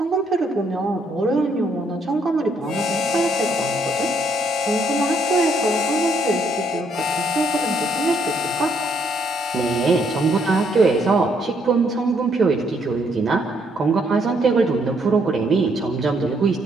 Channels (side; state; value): both; normal; correlation 0.71